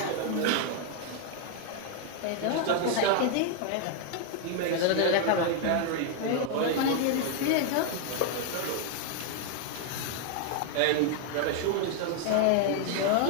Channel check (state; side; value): different; both; correlation 0.00